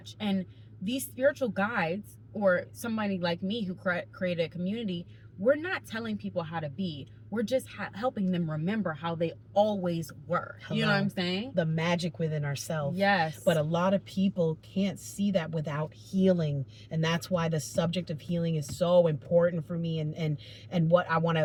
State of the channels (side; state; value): both; identical; correlation 1.00